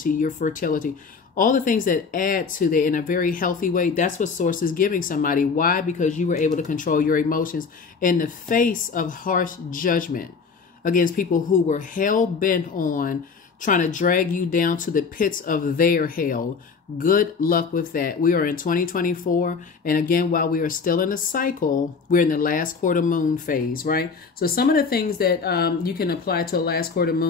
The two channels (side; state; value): right; quieter; 5.2 dB